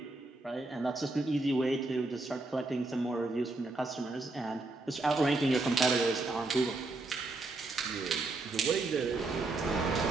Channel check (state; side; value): quieter; left; 3.1 dB